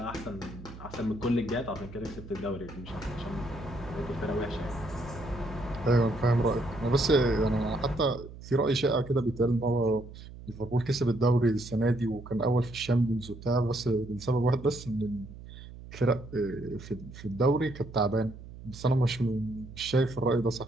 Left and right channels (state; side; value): noise; right; hum, 15 dB below the sound